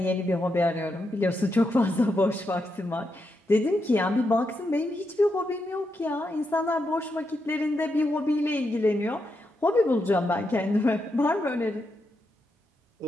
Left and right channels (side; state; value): both; normal; correlation 0.84